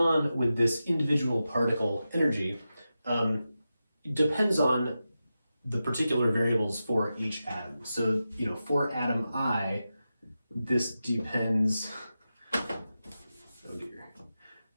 with this individual particle energy depends on the particular variables for each atom. So, for atom I, this depends, oh dear.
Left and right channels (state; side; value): inverted; both; correlation -0.91